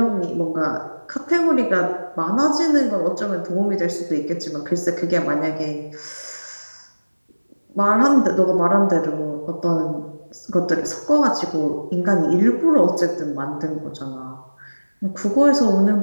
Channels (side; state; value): both; inverted; correlation -1.00